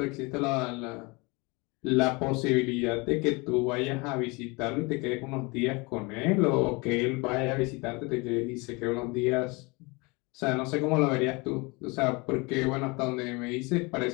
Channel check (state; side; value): quieter; right; 27.0 dB